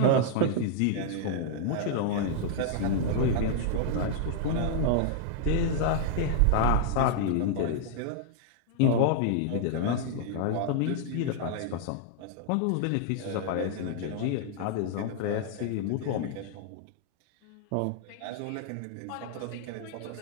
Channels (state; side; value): different; both; correlation -0.01